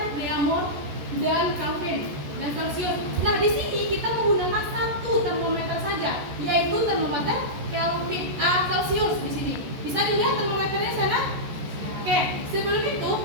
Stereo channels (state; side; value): late; left; 14 ms